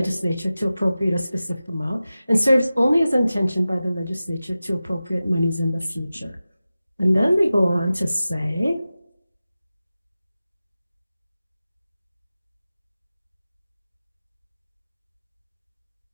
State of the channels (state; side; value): inverted; both; correlation -0.95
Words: to appropriate a specific amount, and serves only as intentioned by the legislature to appropriate monies in the future. And then they go on to say,